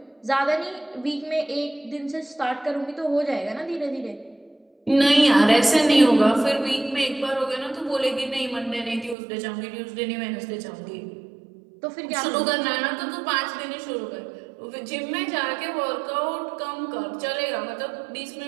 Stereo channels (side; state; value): left; drops out; at 9.2 s